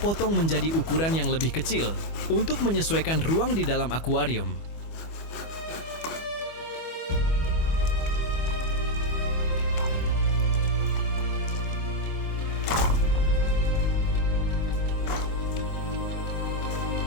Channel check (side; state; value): right; late; 25 ms